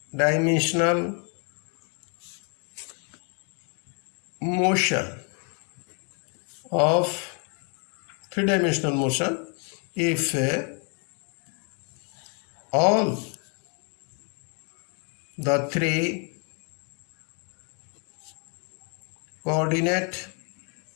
motion if all the three coordinate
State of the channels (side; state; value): right; quieter; 37.8 dB